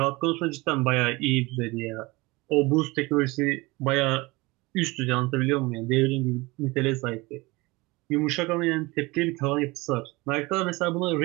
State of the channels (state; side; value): quieter; left; 23.1 dB